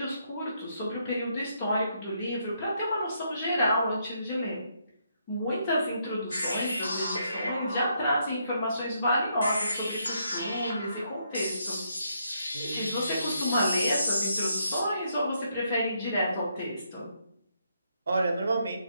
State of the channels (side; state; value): both; inverted; correlation -0.75